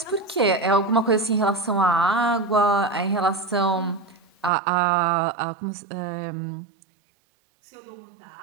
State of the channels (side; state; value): left; drops out; at 4.5 s